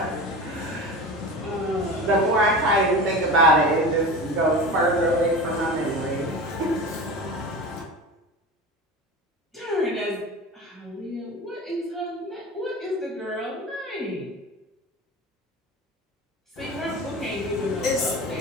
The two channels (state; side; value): normal; both; correlation 0.31